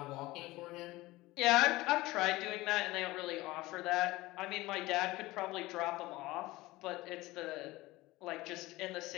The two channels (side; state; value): right; quieter; 19.4 dB